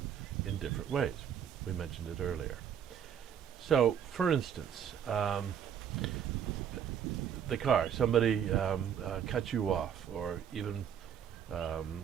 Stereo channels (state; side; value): quieter; left; 8.6 dB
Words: in different ways. We mentioned it earlier. So, for instance, the car, somebody cuts you off, or even